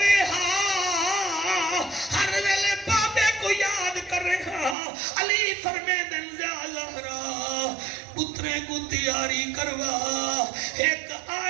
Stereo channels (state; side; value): drops out; left; at 4.8 s